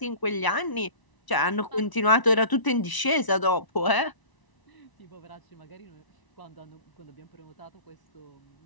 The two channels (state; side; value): late; right; 1.0 ms